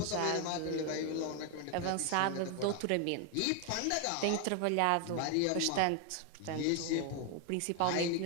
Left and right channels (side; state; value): both; different; correlation 0.01